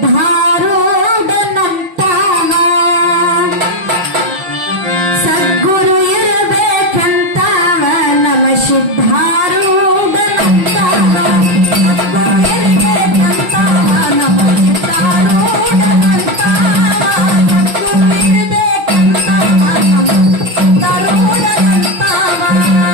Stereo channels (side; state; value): left; late; 6.1 ms